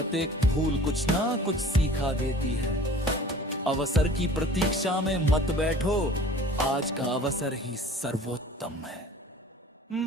भूल कुछ ना कुछ सिखा देती है। अवसर की प्रतीक्षा में मत बैठो, आज का अवसर ही सर्वोत्तम है।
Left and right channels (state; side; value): normal; both; correlation 0.46